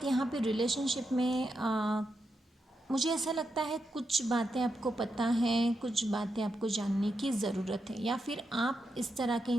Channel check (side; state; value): both; normal; correlation 0.85